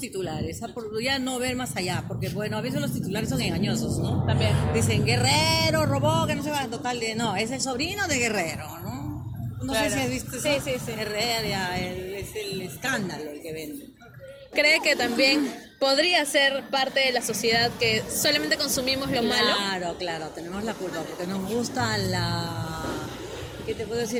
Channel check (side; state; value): both; identical; correlation 1.00